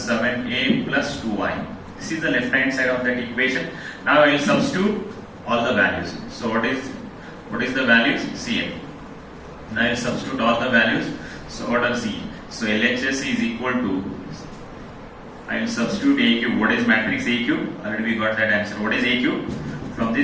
7A plus 2Y. This is the left hand side of that equation. Now I will substitute all the values. So what is the values? Cn. Now I will substitute all the values. So what are C? So LHS is equal to, I will substitute A cube. What is matrix A cube? Already we got that answer. What is A cube? From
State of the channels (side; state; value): both; identical; correlation 1.00